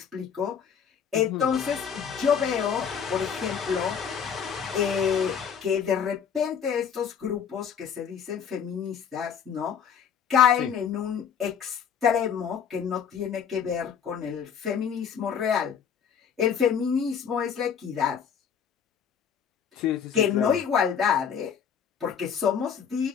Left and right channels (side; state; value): right; quieter; 7.5 dB